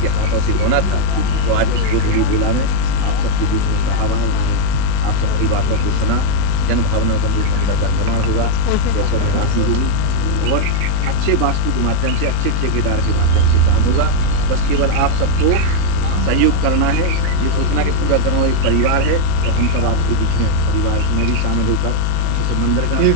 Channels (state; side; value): different; both; correlation 0.00